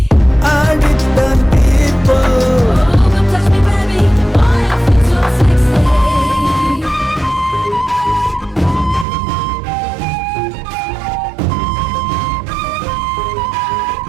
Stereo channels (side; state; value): left; drops out; at 9.1 s